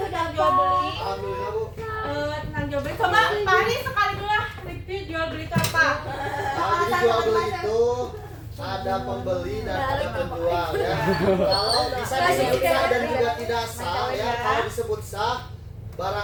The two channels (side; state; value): both; identical; correlation 1.00